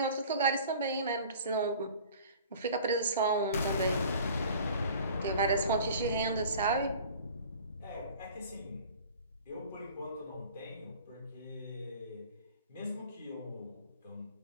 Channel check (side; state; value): both; inverted; correlation -0.46